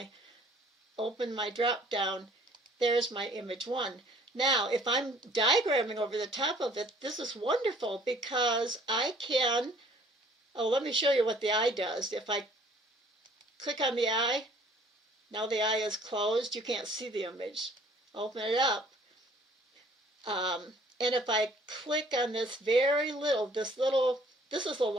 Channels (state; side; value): normal; both; correlation 0.56